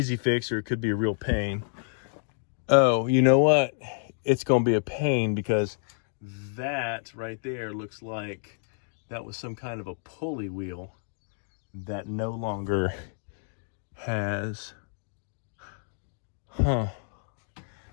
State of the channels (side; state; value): right; silent; digital silence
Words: fix or it could be a real pain. Oh, you know what? It's going to be a pain because that right there looks like that was some kind of a pulley wheel that no longer has. That